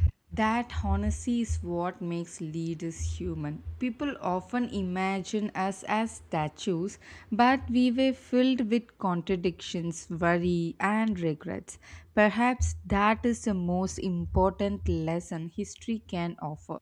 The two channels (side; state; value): both; identical; correlation 1.00